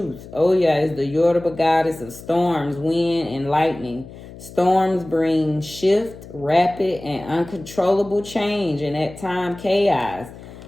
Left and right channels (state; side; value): noise; left; hum, 16 dB below the sound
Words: Oya is the Yoruba goddess of storms, wind, and lightning. Storms bring shift, rapid, and uncontrollable change, and at times chaos.